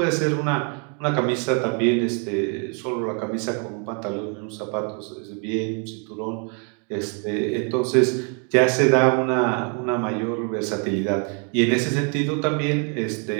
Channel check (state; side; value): quieter; left; 38.2 dB